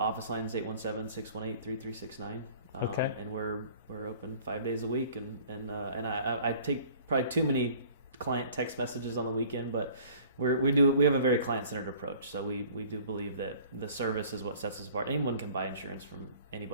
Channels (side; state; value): both; inverted; correlation -0.50